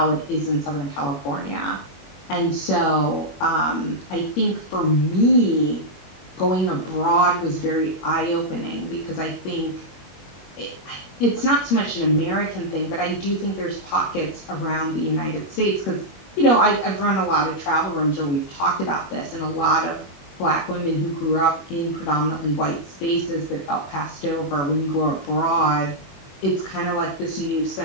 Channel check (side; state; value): right; late; 21 ms